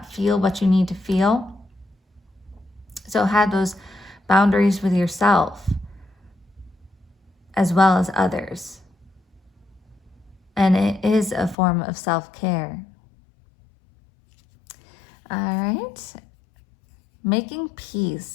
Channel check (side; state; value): right; drops out; at 11.6 s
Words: feel what you need to feel. So have those boundaries with yourself as well as others. And it is a form of self-care. All right. Making